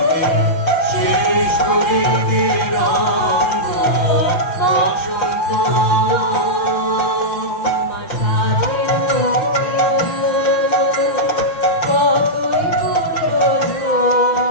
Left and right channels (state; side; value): late; right; 6.1 ms